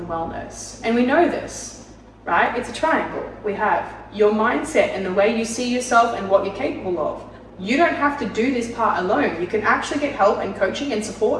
wellness. And we know this, right? It's a triangle. We have your mindset and the way you see yourself and what you're capable of. You don't have to do this part alone. You can actually get help and coaching and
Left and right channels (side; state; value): both; identical; correlation 1.00